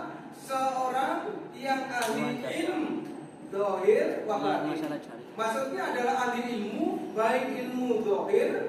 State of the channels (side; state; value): both; identical; correlation 1.00